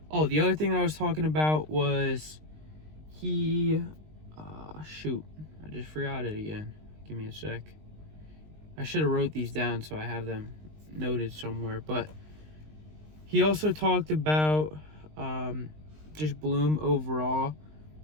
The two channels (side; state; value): left; late; 19 ms